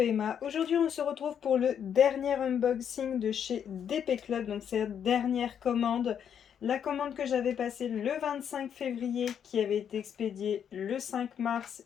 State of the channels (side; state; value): right; quieter; 8.4 dB